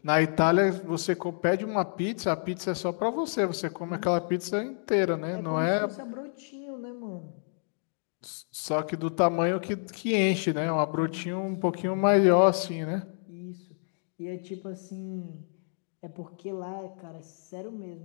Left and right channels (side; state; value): right; silent; 58 dB below the other